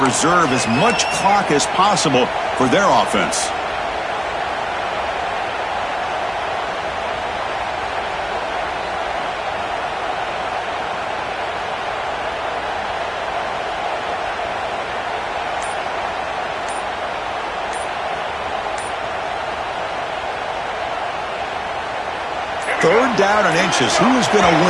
as much clock as possible for their offense. Third down and inches. Who is going to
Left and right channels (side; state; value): both; identical; correlation 1.00